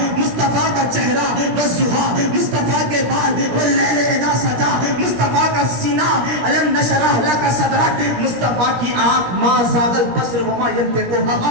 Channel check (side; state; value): left; late; 17 ms